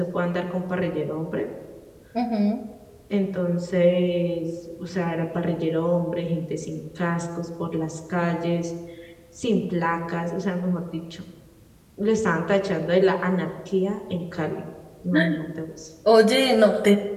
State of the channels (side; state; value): both; identical; correlation 1.00